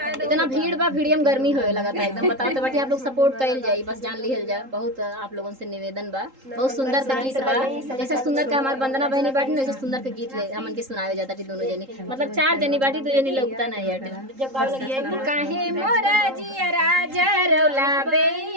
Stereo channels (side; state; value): left; late; 3.8 ms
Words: इतना भीड़ बा, भीड़ में गर्मी होए लगा था एकदम। बताओ तो बाटी आप लोग सपोर्ट कइल जाई, बस जान लिहल जा। बहुत आप लोगों से निवेदन बा, बहुत सुंदर से गीत बा। जैसे सुंदर का हमार वंदना बहनी बाटी वैसे सुंदर के गीत ले हमन के सुनावे जाता थी दोनों जनी, मतलब 4 जनी बाटी तो जनी लगता नहीं है। काहे मोरा जियरा जरौला